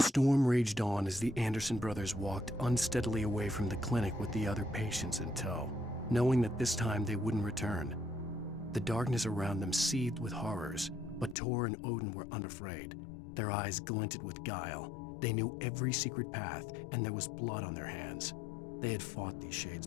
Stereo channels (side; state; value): right; drops out; at 11.4 s